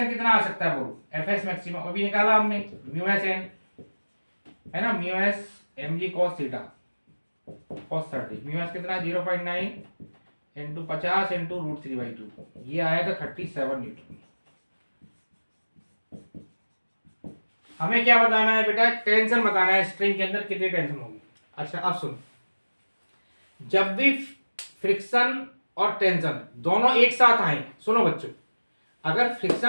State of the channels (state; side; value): inverted; both; correlation -1.00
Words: कितना आ सकता है बोलो, एफएस मैक्सिमम अभी निकाला हमने, म्यू एस एन है ना, mu S mg cos theta cos 30, mu S कितना 0.9 इंटू 50 इंटू √3/2, ये आएगा 37 न्यूटन। हमें क्या बताना है बेटा, टेंशन बताना है, स्ट्रिंग के अंदर कितनी टेंशन होगी। अच्छा अब सुनो, जब भी फ्रिक्शन और टेंशन दोनों एक साथ आए, सुनो बच्चों, अगर फ्रिक्शन